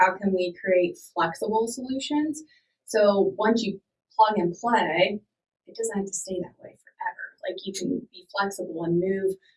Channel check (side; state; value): both; identical; correlation 1.00